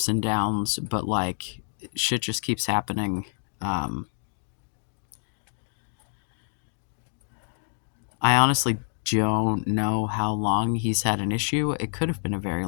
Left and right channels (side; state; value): right; silent; digital silence